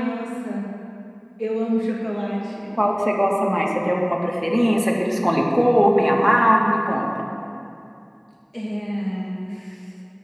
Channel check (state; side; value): identical; both; correlation 1.00